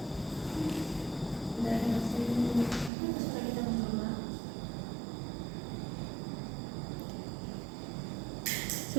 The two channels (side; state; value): left; drops out; at 2.9 s